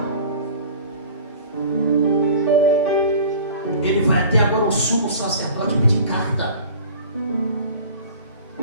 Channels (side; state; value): both; inverted; correlation -0.43